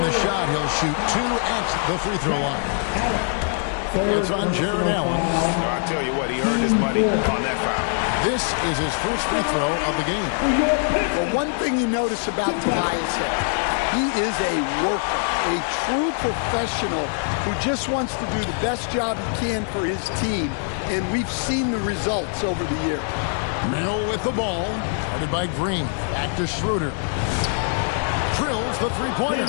the shot. He'll shoot 2 at the free throw line. It's on Jared Allen. I'll tell you what, he earned his money on that foul. This is his first free throw of the game. Well, one thing you notice about Tobias Harris, he is a worker, a true professional who just wants to do the best job he can for his team, and we've seen the results over the year. Mill with the ball, guarded by Green. Back to Schroeder. Drills the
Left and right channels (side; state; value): right; silent; 59 dB below the other